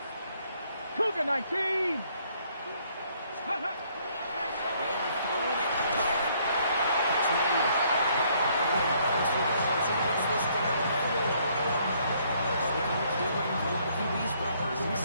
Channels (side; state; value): both; inverted; correlation -0.66